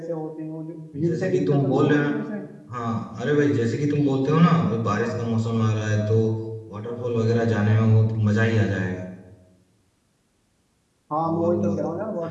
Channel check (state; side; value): identical; both; correlation 1.00